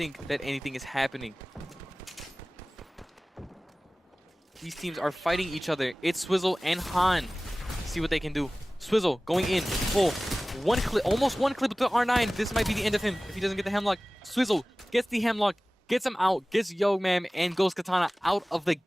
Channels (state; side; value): normal; both; correlation 0.98